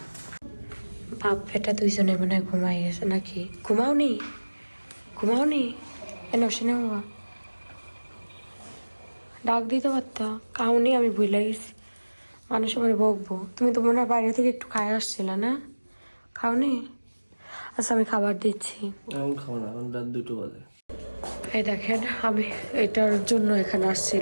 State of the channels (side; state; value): both; inverted; correlation -1.00